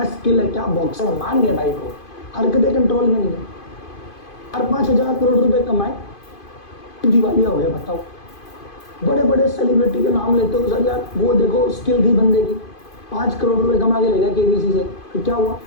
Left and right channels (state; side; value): late; right; 2.5 ms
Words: स्किल है, क्या बॉक्सर, मान गया भाई को, हरकतें कंट्रोल में नहीं है। 4-5 हजार करोड़ रुपए कमाए, दिवालिया हो गया। बताओ, बड़े बड़े सेलिब्रिटी के नाम लेते हो सर यार, वो देखो स्किल थी बंदे की, 5 करोड़ रुपए कमा के ले गया केबीसी से, फिर क्या हुआ,